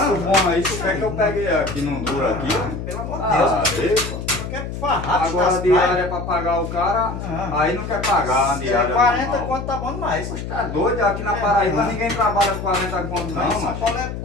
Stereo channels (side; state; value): left; noise; hum, 7 dB below the sound